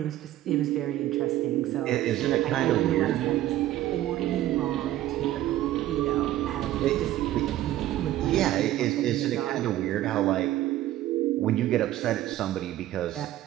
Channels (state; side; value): quieter; left; 14.1 dB